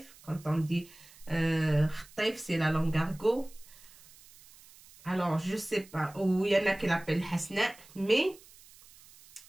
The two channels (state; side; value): noise; right; hiss, 23 dB below the sound